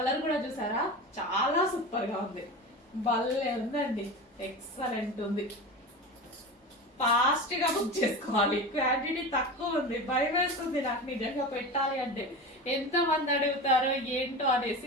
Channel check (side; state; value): both; normal; correlation 0.28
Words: కూడా చూసారా, చాలా సూపర్ గా ఉంది. భలే ఉందండి, ఎక్సలెంట్ ఉంది. ఫాస్ట్ గా బుక్ చేసుకోవాలి, క్వాంటిటీ తక్కువ ఉంది. భయం వేస్తుంది నాకు నిజంగా పెట్టాలి అంటే, ఎంత మంది అడుగుతారో ఏంటో